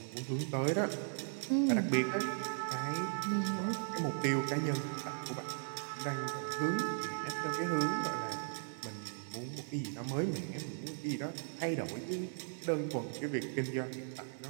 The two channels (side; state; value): left; silent; digital silence